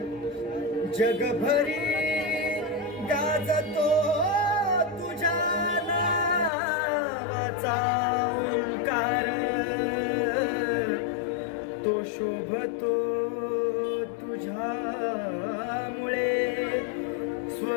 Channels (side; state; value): right; drops out; at 6.5 s